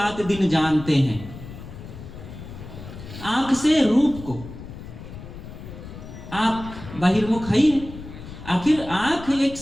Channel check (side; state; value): left; noise; rumble, 13 dB below the sound